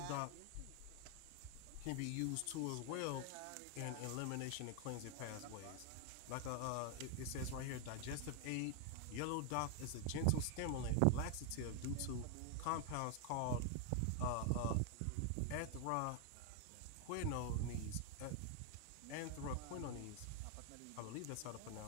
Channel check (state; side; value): different; both; correlation 0.00